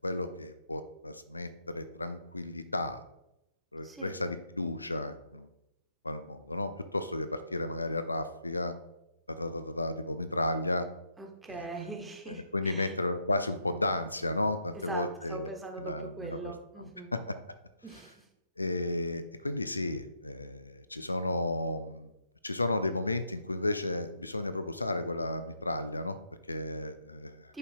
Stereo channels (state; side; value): inverted; both; correlation -0.77